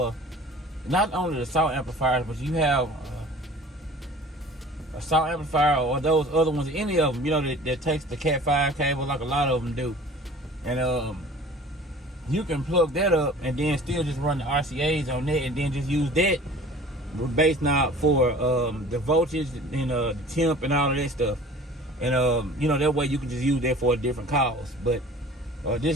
not only the SAW amplifiers, but you have a SAW amplifier or those other ones, any of them, that takes the Cat 5 cable, like a lot of them do, and you can plug that up and then still just run the RCAs on that, and then just use that bass knob for the voltage and the temp and all of that stuff. And that way you can just use that for a different cause. But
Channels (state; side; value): normal; both; correlation 0.45